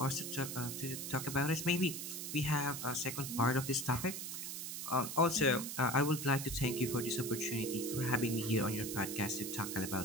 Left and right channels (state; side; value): noise; right; hiss, 6 dB below the sound